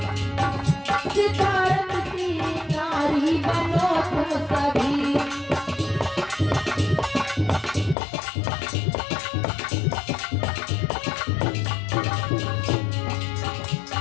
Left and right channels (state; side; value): drops out; right; at 8.0 s